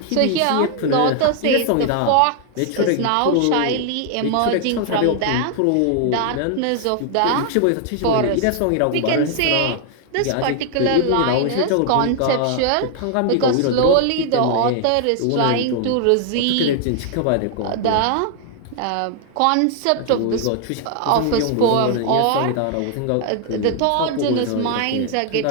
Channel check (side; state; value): both; different; correlation 0.00